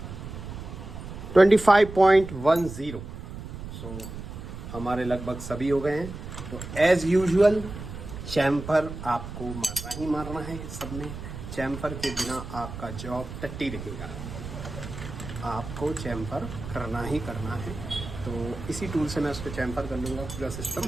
$25.10। सो हमारे लगभग सभी हो गए हैं। तो एज़ यूजुअल चैम्फर आपको मारना ही मारना है। सब में चैम्फर के बिना आपका जॉब टट्टी रहेगा, आपको चैम्फर करना ही करना है। तो इसी टूल से मैं उसको चैम्फर कर लूँगा पूरा सिस्टम।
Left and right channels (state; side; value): noise; right; rumble, 10 dB below the sound